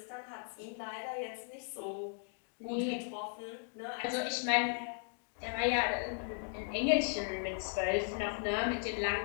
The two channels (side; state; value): right; silent; 53 dB below the other